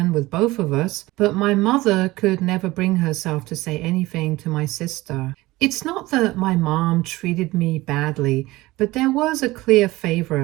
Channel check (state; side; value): quieter; left; 19.3 dB